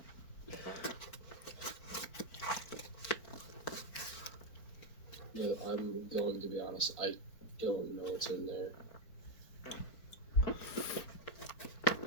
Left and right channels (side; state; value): right; late; 4.4 ms